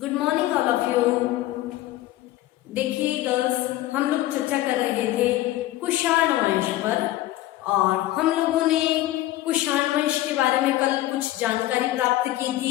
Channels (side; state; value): right; quieter; 15.5 dB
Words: morning all of you. देखिए girls, हम लोग चर्चा कर रहे थे कुषाण वंश पर और हम लोगों ने कुषाण वंश के बारे में कल कुछ जानकारी प्राप्त की